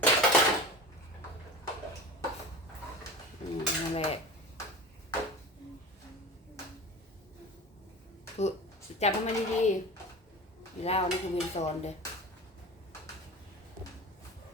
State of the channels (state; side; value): normal; both; correlation 0.32